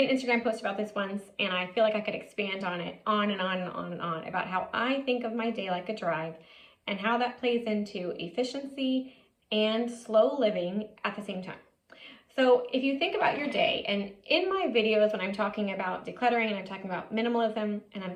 an Instagram post about this once, and I feel like I could expand on it on and on and on and on about how I think of my day like a drive and how that plays into efficiency and slow living at the same time. So if you think about your day, and in my videos when I'm talking about decluttering and I'm talking about minimalism and I'm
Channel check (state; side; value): identical; both; correlation 1.00